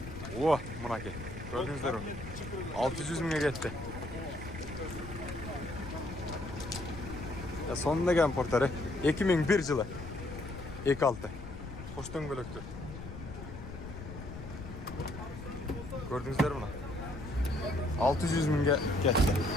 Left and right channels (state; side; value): noise; left; rumble, 11 dB below the sound